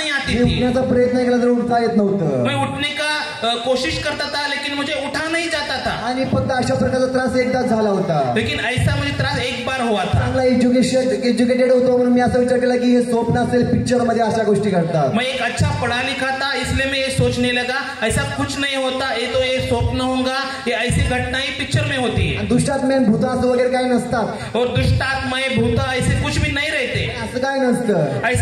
आती मी थी. उठण्याचा प्रयत्न केला तर उठता येत नव्हतं. मैं उठने का कोशिश करता था लेकिन मुझे उठा नहीं जाता था. आणि फक्त अशा प्रकारचा त्रास एकदाच झाला होता. लेकिन ऐसा मुझे त्रास एक बार हुआ था. चांगला एज्युकेटेड होतो म्हणून मी असं विचार केला की हे स्वप्न असेल, पिक्चर मध्ये अशा गोष्टी घडतात. मैं एक अच्छा पढ़ा लिखा था इसलिए मैं ये सोचने लगा ऐसा कुछ नहीं होता, ये तो ये स्वप्न होगा, ये ऐसी घटनाएं पिक्चर में होती है. आणि दुष्टात्मे भूत असं वगैरे काही नसतात. और दुष्टात्माएं भूत ऐसे कुछ भी नहीं रहते. असं काय नसतं.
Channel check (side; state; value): both; identical; correlation 1.00